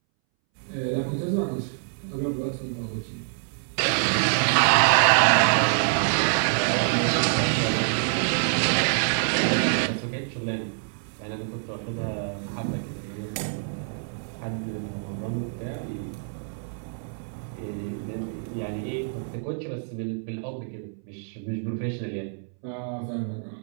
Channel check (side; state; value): left; silent; 61 dB below the other